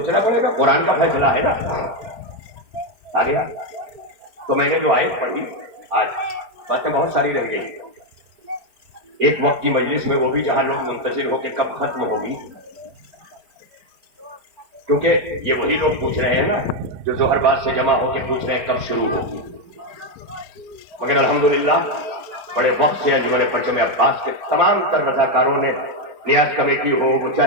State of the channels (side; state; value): left; late; 4.8 ms